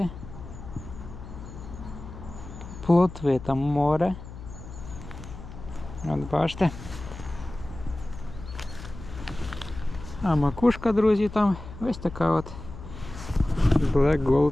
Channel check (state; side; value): noise; left; hum, 13 dB below the sound